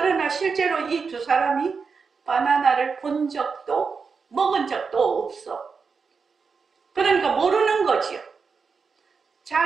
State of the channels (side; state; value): left; quieter; 5.3 dB